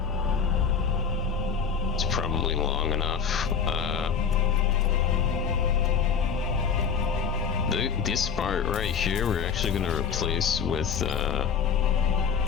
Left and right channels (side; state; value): right; quieter; 6.6 dB